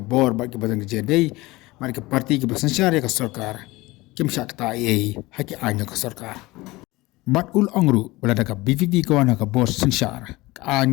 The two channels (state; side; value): quieter; right; 20.7 dB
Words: ba ke badan ke jedai mari ke parti ke bersensyar ke sarkar kim syakta ai haki anya ke sarkar. Bat ul angru belada ka BVP kawana ka bos sensyar